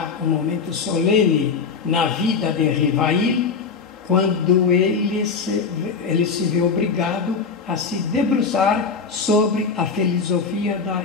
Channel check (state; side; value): quieter; right; 5.3 dB